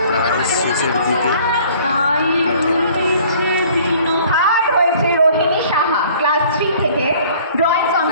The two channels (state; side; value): inverted; both; correlation -0.53